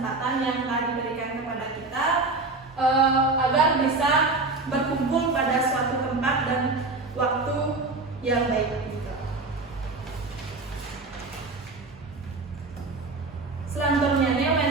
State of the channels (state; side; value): quieter; left; 3.5 dB